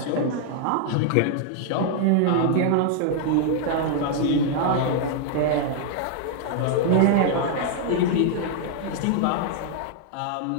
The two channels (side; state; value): both; different; correlation 0.00